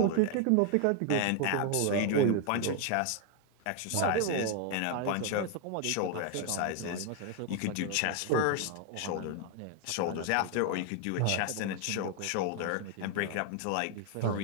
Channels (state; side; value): different; both; correlation 0.00